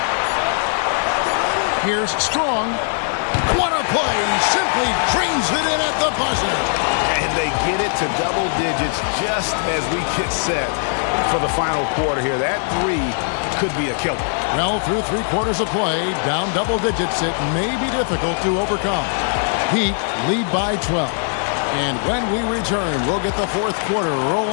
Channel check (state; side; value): silent; right; digital silence